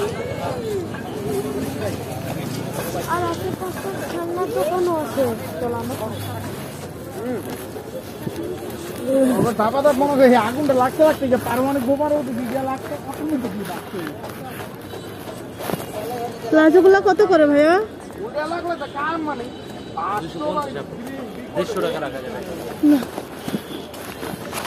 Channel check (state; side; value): identical; both; correlation 1.00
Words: আগুনটা লাগতে লাগতে পারমাণবিক বোমারও লাগতে প্লাজো গুলা কত করে ভাইয়া? মানে 150 টাকা রাখা যাবে।